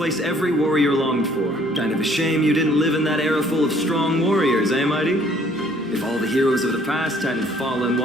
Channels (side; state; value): right; noise; hum, 29 dB below the sound